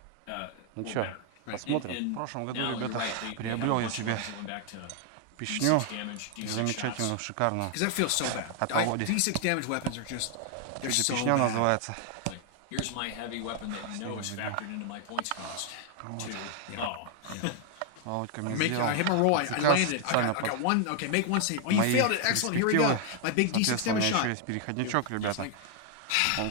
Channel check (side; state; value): both; different; correlation 0.00